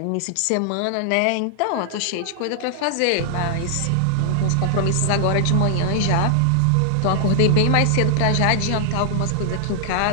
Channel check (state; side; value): different; both; correlation -0.01